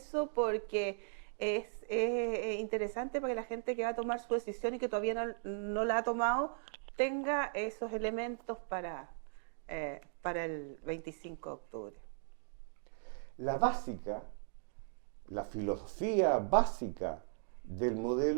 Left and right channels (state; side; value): silent; left; digital silence